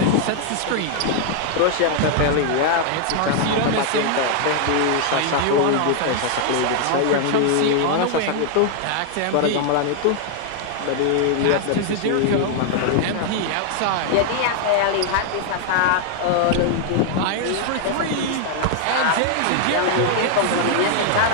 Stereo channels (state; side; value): different; both; correlation 0.00